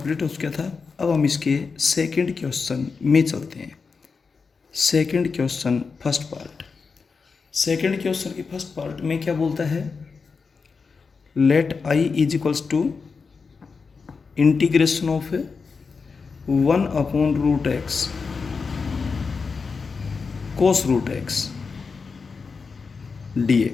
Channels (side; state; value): right; quieter; 5.0 dB